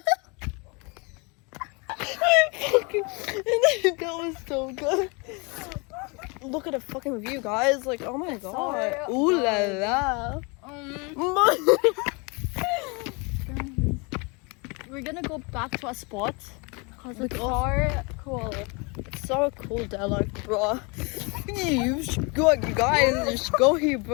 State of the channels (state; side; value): quieter; right; 30.3 dB